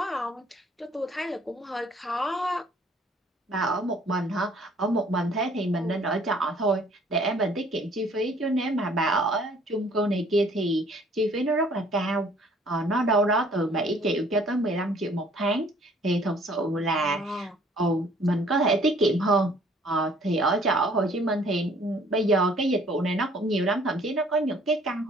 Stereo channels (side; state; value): both; normal; correlation 0.58